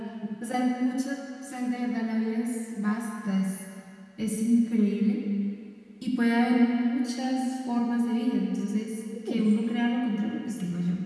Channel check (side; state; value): both; identical; correlation 1.00